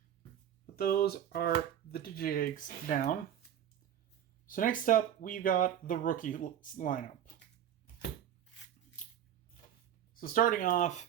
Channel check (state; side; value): quieter; left; 10.2 dB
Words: But those are the Digi-Eggs down. So next up, we've got the rookie lineup. So starting